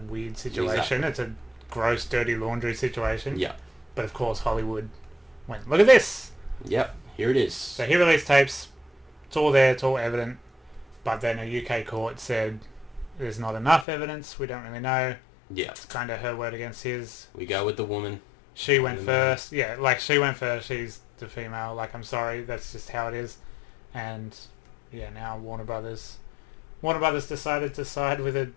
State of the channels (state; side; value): drops out; right; at 13.9 s